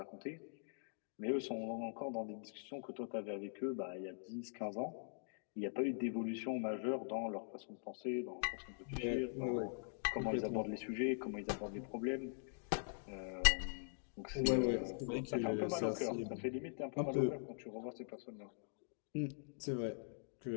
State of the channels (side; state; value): right; silent; digital silence